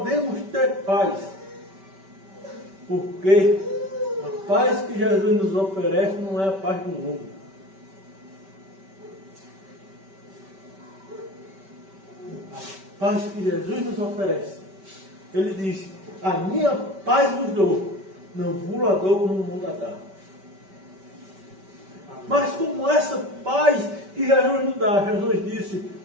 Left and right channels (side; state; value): left; late; 5.2 ms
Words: ter paz? Porque a paz que Jesus nos oferece não é a paz do mundo. A paz que Jesus nos oferece. Ele diz, a minha paz vos dou, não vos la dou como o mundo a dá. Mas como essa paz que Jesus nos dá, Jesus disse,